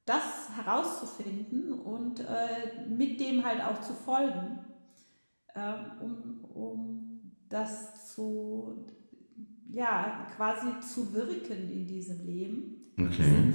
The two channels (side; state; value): both; inverted; correlation -1.00